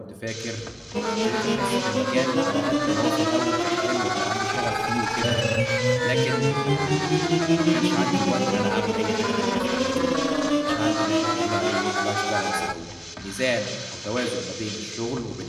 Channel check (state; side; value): identical; both; correlation 1.00